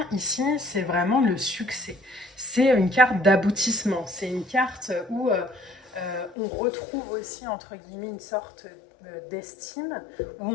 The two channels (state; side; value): drops out; right; at 6.4 s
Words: ici, c'est vraiment le succès. C'est une carte d'aboutissement. C'est une carte où on retrouve aussi, entre guillemets, une sorte d'estime, où